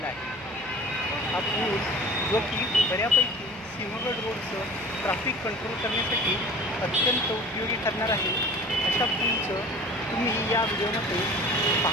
आहे. हा पूल जो की बऱ्यापैकी सिंहगड रोडचं ट्रॅफिक कंट्रोल करण्यासाठी अत्यंत उपयोगी ठरणार आहे. अशा पूलचं तुम्ही या व्हिडिओमध्ये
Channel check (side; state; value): left; noise; hum, 25 dB below the sound